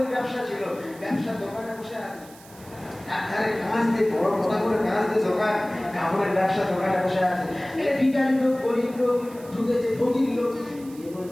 ব্যবসা ছিল, ব্যবসা দোকানে বসে আছে, একধারে কাঁচ দিয়ে বড় কথা করে কাঁচ দিয়ে দোকান, কাপড়ের ব্যবসা দোকানে বসে আছে। এটা ভিখারি লোক, গরিব লোক ঢুকেছে, ফকির লোক। এ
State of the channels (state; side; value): noise; right; hiss, 22 dB below the sound